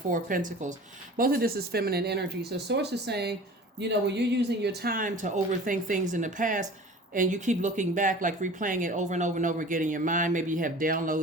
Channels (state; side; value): normal; both; correlation 0.41